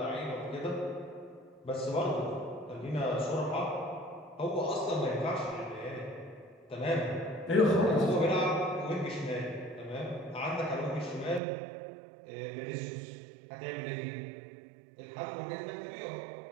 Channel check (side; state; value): left; drops out; at 11.4 s